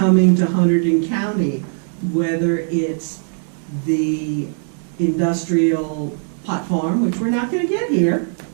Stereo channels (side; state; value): left; silent; digital silence